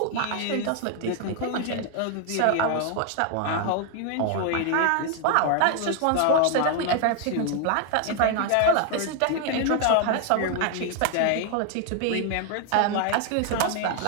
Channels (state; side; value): different; both; correlation 0.00